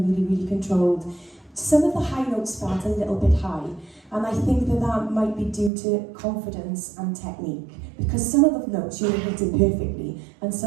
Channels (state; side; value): drops out; left; at 5.7 s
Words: really controlled. Some of the high notes felt a little bit high, and I think that might be due to confidence and technique, because some of the notes you were hitting perfectly, and